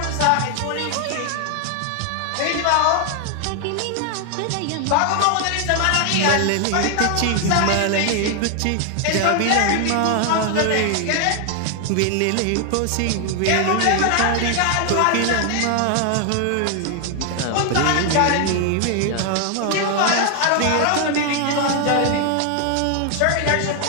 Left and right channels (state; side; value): different; both; correlation 0.00